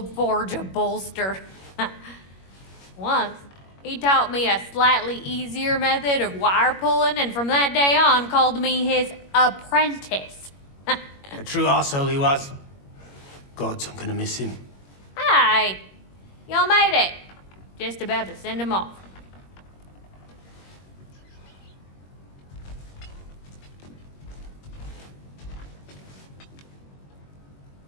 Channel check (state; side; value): late; right; 21 ms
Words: forge a bolster. Once, he taught me a slightly easier method of wire pulling, and from that day on called me his apprentice. A true asshole he was. Gods, I'm gonna miss him. Hi, y'all made it. Just about to send him off.